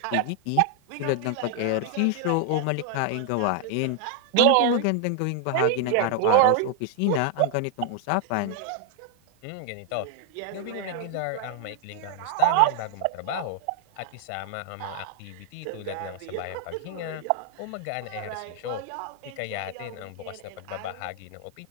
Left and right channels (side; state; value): both; different; correlation 0.00